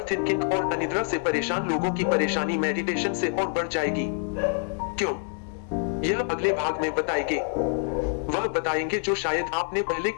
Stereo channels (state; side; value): silent; right; 61 dB below the other